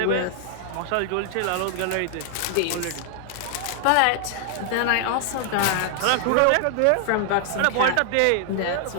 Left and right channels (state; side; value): different; both; correlation 0.00